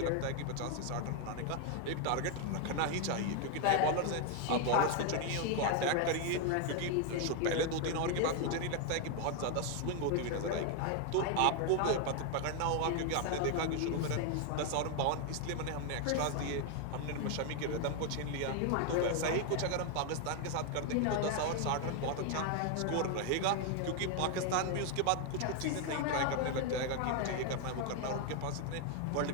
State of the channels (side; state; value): both; different; correlation 0.01